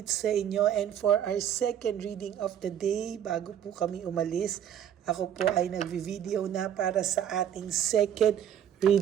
sa inyo, and for our second reading of the day, bago po kami umalis, ako po ay nagvi-video na para sa ating second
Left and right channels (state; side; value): quieter; left; 9.7 dB